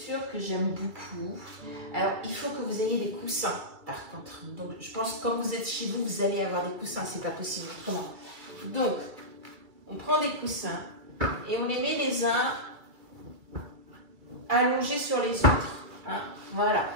que j'aime beaucoup. Alors, il faut que vous ayez des coussins, par contre. Donc, je pense que quand vous êtes chez vous, vous allez avoir des coussins. C'est pas possible autrement. Donc, on prend des coussins et on les met les uns allongés sur les autres. Hein, voilà.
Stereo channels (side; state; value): left; late; 2.3 ms